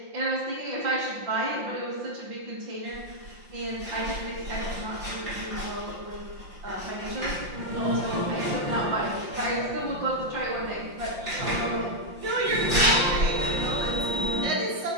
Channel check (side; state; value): left; late; 5.7 ms